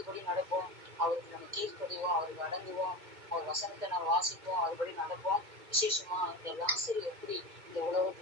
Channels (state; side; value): late; left; 2.0 ms